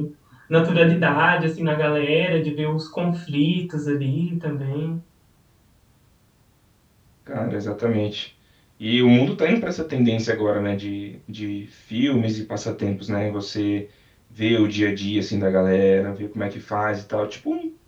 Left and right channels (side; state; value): both; identical; correlation 1.00